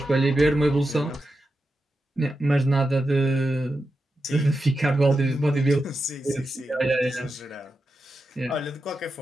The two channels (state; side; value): normal; both; correlation 0.89